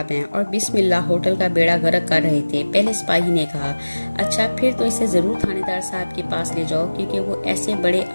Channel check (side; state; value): both; inverted; correlation -1.00